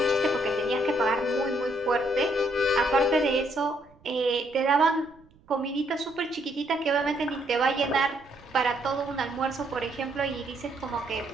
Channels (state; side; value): noise; right; rumble, 29 dB below the sound